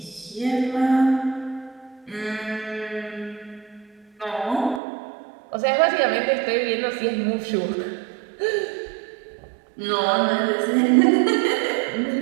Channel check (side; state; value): left; drops out; at 4.8 s